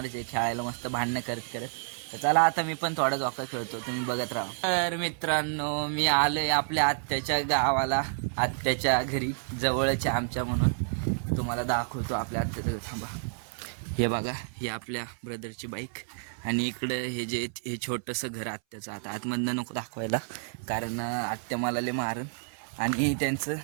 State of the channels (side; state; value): left; silent; 58 dB below the other